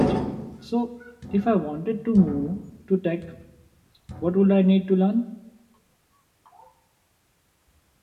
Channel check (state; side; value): identical; both; correlation 1.00